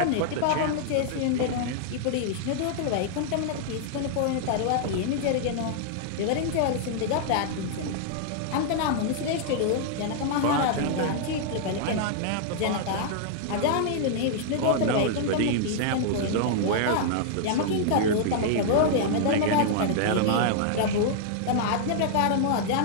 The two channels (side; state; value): both; different; correlation -0.01